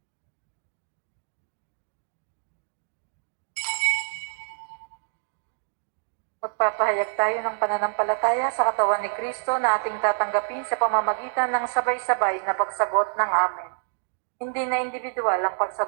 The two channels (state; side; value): silent; left; digital silence